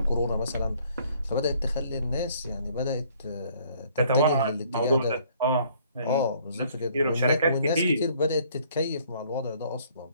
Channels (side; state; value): both; inverted; correlation -0.61